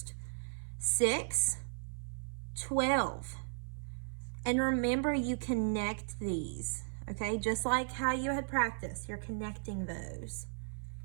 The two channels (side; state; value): left; silent; 54 dB below the other